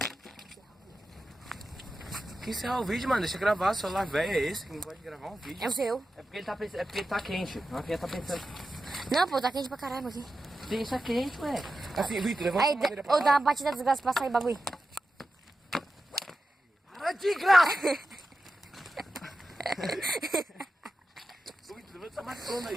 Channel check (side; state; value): both; normal; correlation 0.92